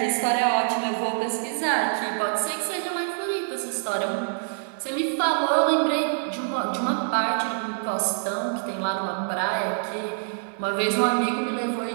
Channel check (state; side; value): silent; left; 61 dB below the other